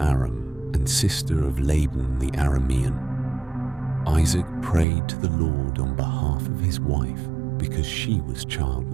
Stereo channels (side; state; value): left; drops out; at 4.9 s